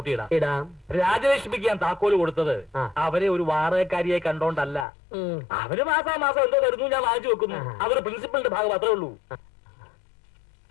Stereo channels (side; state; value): right; drops out; at 4.9 s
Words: ഇടാം. രാജലക്ഷ്മിക്ക് ഞാൻ താക്കോല് കൊടുത്തത് അവരെ ഒരു വാടകക്കാരിയെ കണ്ടോണ്ടല്ല. അവര് മാസം എന്തോ തരുന്നു, ഞാൻ വാങ്ങിച്ചു വെക്കുന്നു. അവര് പ്രിൻസിപ്പലിന്റെ ഭാഗം മാത്രമേ ഉള്ളൂ.